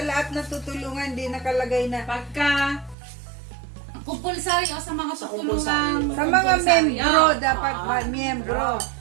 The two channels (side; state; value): left; drops out; at 3.0 s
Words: lahat na tutulungan di nakalagay na Pagka kumpulsary o sa mga tutulungan sa mga membro dapat miyembro.